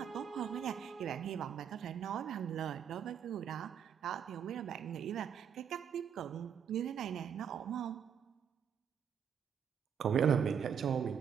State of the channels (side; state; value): left; quieter; 7.9 dB